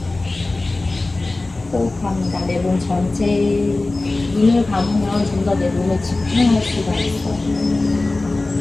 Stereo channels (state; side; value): quieter; right; 3.1 dB